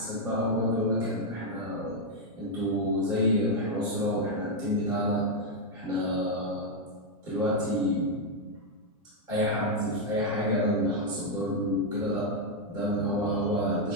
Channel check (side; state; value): both; normal; correlation 0.00